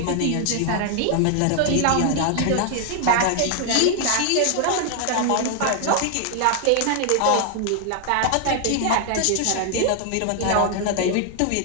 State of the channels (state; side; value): different; both; correlation 0.00